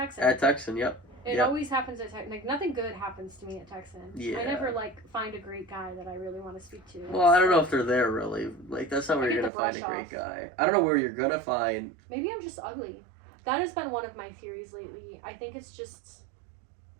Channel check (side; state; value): left; drops out; at 9.5 s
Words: At Texan, yep. It always happens at Texan. Like, nothing good happens to me at Texan. Yeah. I never find a great guy that I really want to speak to. Well, I don't know if they're there really. Like, that's not where you're gonna find a great guy. I don't know where you're gonna find. Maybe I'm just ugly. That has been one of my theories lately. I think it's just,